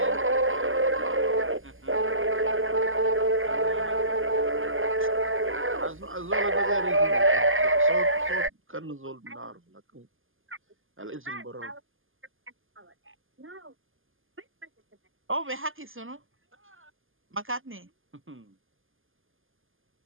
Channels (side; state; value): left; late; 0.59 ms